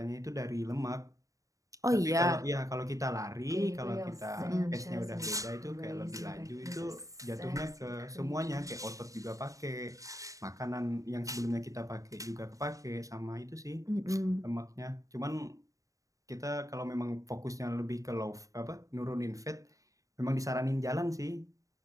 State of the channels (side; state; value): left; late; 0.16 ms